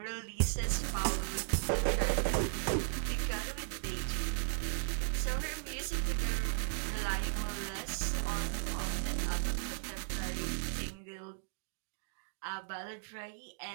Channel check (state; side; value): silent; left; digital silence